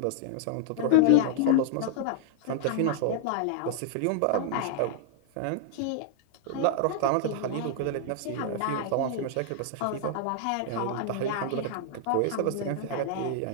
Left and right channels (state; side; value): different; both; correlation -0.01